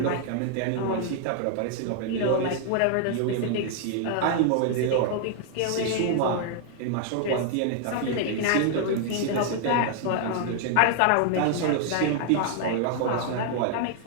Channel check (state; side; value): different; both; correlation 0.00